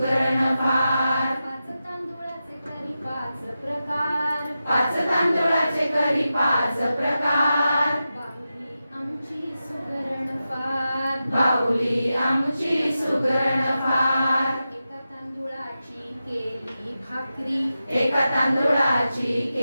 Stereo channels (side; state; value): both; inverted; correlation -0.91